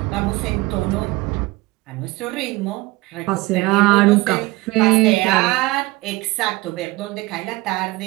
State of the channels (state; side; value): quieter; left; 21.2 dB